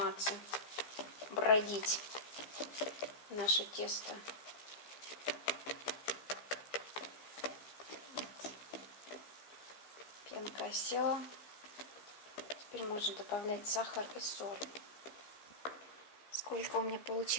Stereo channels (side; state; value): right; late; 15 ms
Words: бродить наше тесто. Пенка осела. Теперь можно добавлять сахар и соль. Сколько у меня